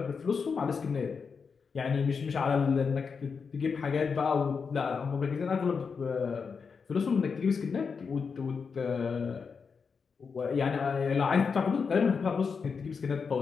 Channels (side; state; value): right; quieter; 5.5 dB